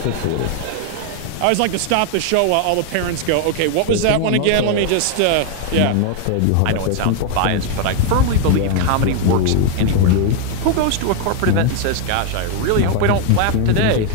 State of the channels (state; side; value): different; both; correlation 0.01